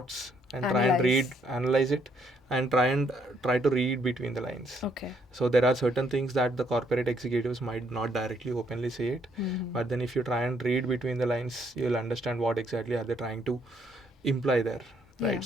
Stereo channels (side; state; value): both; normal; correlation 0.70